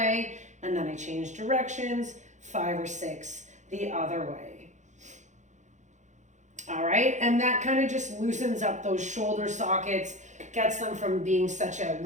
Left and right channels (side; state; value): left; late; 0.35 ms